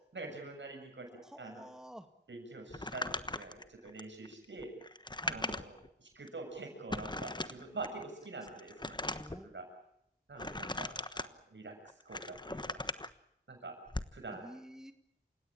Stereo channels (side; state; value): both; normal; correlation 0.08